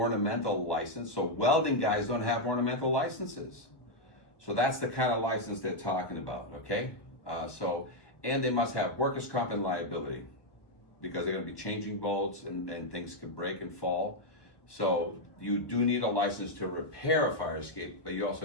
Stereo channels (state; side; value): late; right; 1.2 ms